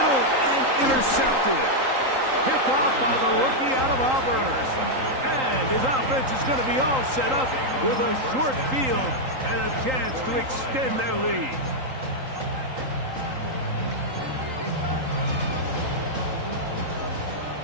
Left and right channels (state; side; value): late; left; 3.8 ms